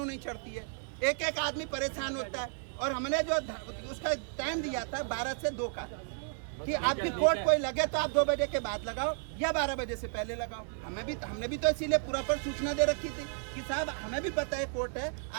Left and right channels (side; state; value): left; silent; 56 dB below the other